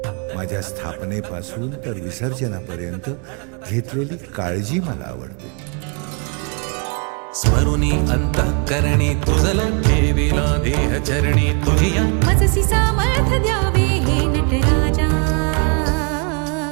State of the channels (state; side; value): quieter; left; 35.9 dB